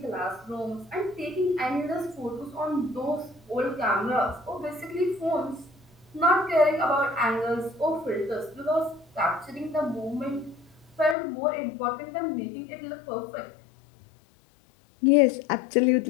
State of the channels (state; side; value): drops out; right; at 11.2 s